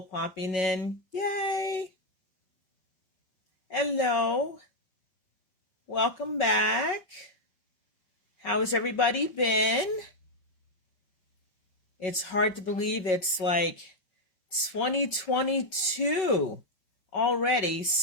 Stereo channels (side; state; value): right; late; 5.4 ms